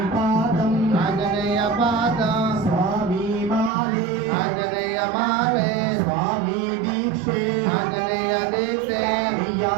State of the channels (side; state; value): left; drops out; at 3.7 s